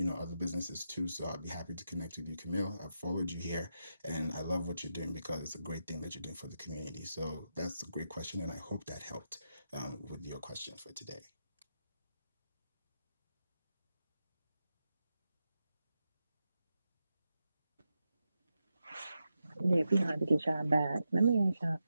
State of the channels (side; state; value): both; inverted; correlation -0.87